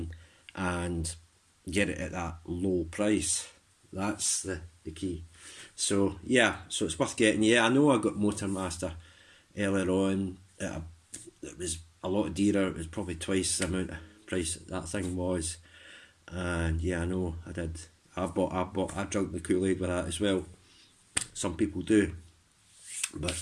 and get it at that low price. That's the key. So yeah, so it's worth getting. Yeah, I know I got Motormaster earlier on. It was a lot dearer. It was probably twice the amount of price that thing was. And yeah, I know I did. I drank the Kool-Aid with that as well. Some people do.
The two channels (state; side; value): identical; both; correlation 1.00